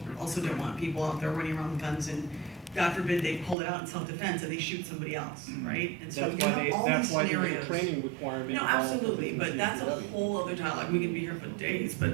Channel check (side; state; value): left; drops out; at 3.6 s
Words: also don't want people out there running around with guns, and God forbid they pull it out in self-defense and they shoot somebody else, right? And so you have all these scenarios. There's a training requirement. No, absolutely, but that's a whole other dialogue. We can be here for days,